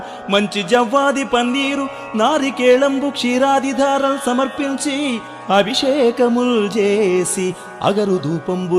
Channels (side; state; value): both; identical; correlation 1.00